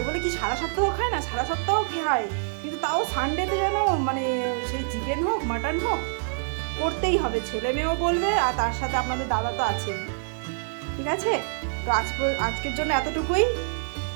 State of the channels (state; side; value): silent; left; 61 dB below the other